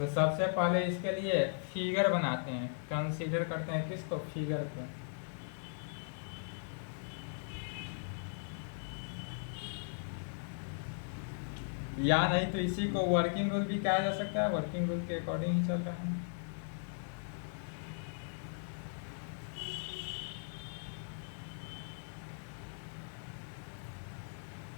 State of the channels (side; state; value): right; silent; digital silence